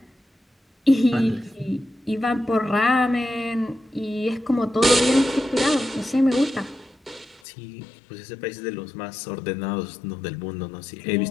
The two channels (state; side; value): drops out; right; at 7.4 s